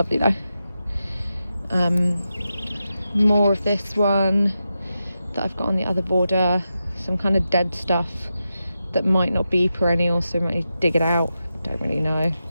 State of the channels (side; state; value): both; inverted; correlation -0.89